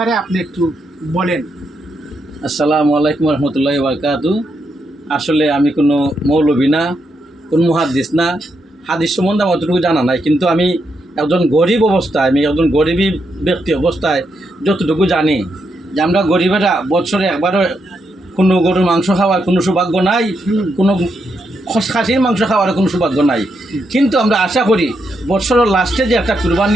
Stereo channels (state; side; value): normal; both; correlation 0.81